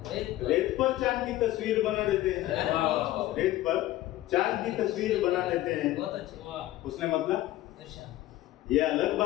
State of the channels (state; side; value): quieter; right; 15.4 dB